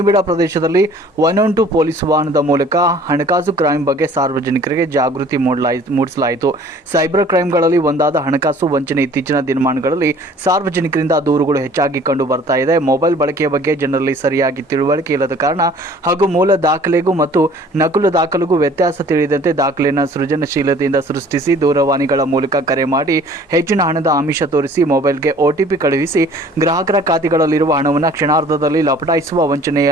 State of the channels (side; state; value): both; normal; correlation 0.52